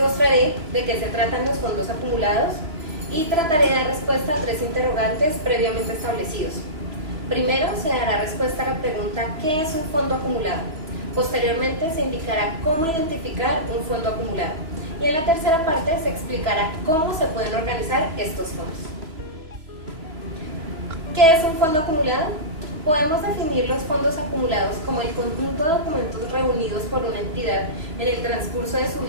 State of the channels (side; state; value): left; late; 3.0 ms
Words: mostraré de qué se tratan los fondos acumulados y trataré de dar respuesta a 3 interrogantes previamente establecidos. Primero se dará respuesta a la pregunta ¿qué es un fondo acumulado? Posteriormente se indicará cómo identificar un fondo acumulado. Y en la tercera parte se explicará cómo se pueden organizar estos fondos. ¿Qué es un fondo acumulado? Podemos definir los fondos acumulados como el conjunto de documentos reunidos por una entidad en el transcurso de su